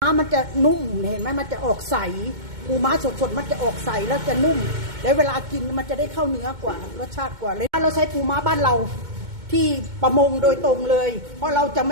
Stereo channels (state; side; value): late; left; 2.2 ms